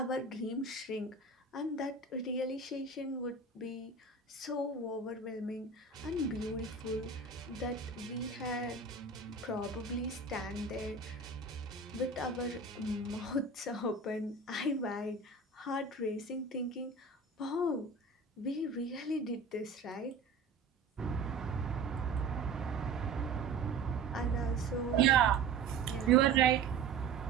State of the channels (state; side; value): quieter; left; 4.2 dB